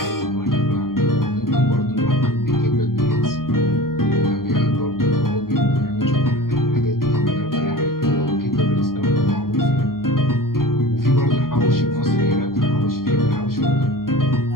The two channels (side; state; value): right; late; 0.92 ms